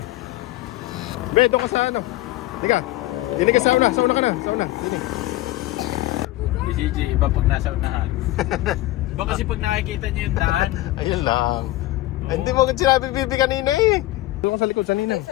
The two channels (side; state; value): right; quieter; 17.3 dB